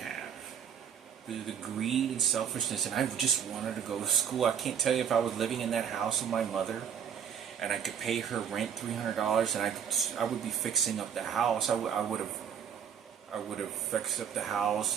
The greed and selfishness, and I just wanted to go to school. I can't tell you, if I was living in that house with my mother and I could pay her rent $300 and I would be fixing up the house, I would have fixed up the house,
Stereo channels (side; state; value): left; quieter; 8.1 dB